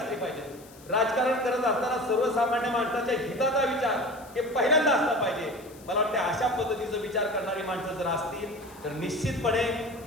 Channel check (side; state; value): left; noise; hiss, 23 dB below the sound